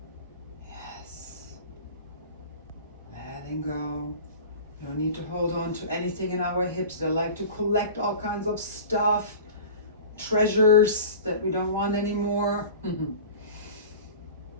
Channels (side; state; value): both; inverted; correlation -0.37